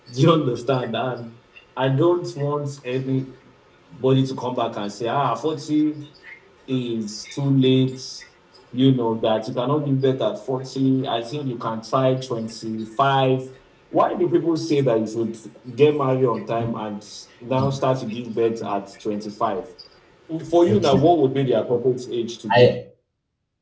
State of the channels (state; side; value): identical; both; correlation 1.00